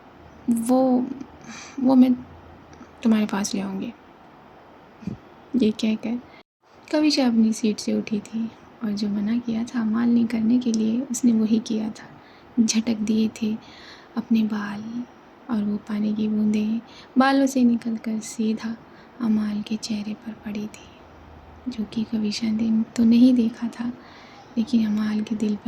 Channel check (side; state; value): both; identical; correlation 1.00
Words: वो वो मैं तुम्हारे पास ले आऊँगी। ये कहकर कविशा अपनी सीट से उठी थी और जो मना किया था मालनी करने के लिए उसने वही किया था। झटक दिए थे अपने बाल और वो पानी की बूंदें बालों से निकलकर सीधा अमाल के चेहरे पर पड़ी थी, जो कि कविशा ने तो नहीं देखा था, लेकिन अमाल के दिल